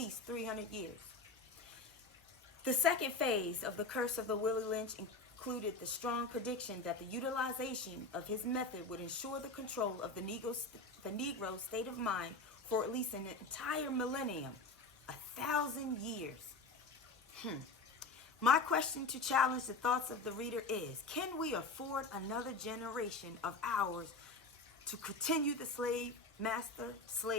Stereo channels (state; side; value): quieter; right; 3.5 dB